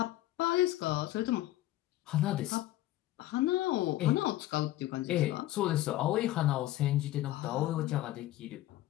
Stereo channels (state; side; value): quieter; right; 15.3 dB